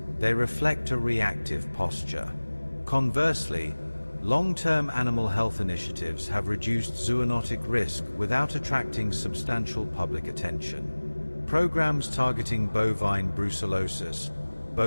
they reflect a reactive posture. Conversely, long-term animal health initiatives have reduced zoonotic risk without attracting substantial public attention. Programs targeting bovine brucellosis,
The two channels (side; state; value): both; inverted; correlation -1.00